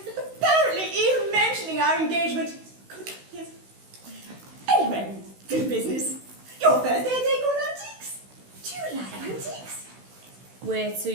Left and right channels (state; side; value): late; left; 16 ms